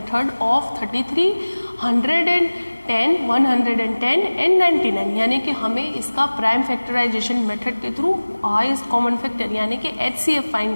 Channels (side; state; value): both; inverted; correlation -1.00